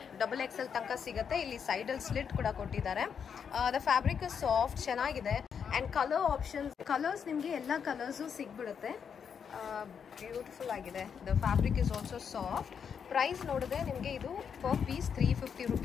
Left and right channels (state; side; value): quieter; right; 7.1 dB